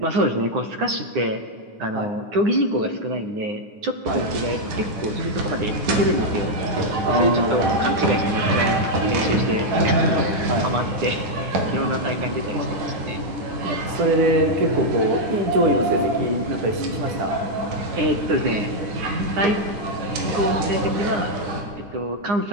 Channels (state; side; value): late; left; 9.8 ms